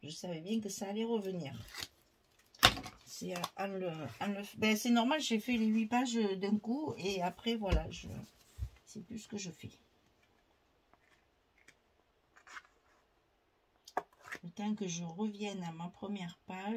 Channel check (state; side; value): identical; both; correlation 1.00